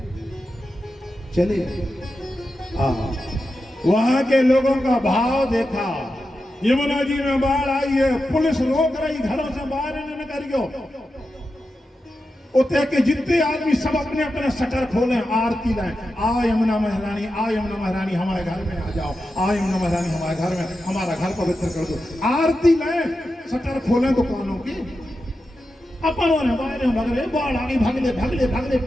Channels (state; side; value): normal; both; correlation 0.90